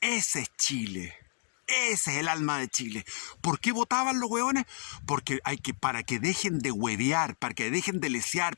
Ese es Chile. Ese es el alma de Chile. ¿Por qué votaban los hueones? Porque para que dejen de huevear, para que dejen de lesear,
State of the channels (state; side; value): silent; right; 57 dB below the other